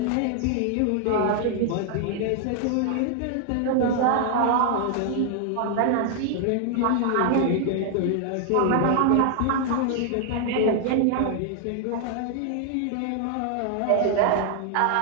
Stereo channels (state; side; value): different; both; correlation 0.00